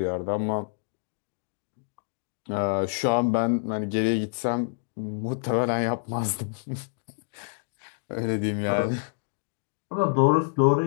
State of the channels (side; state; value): right; silent; digital silence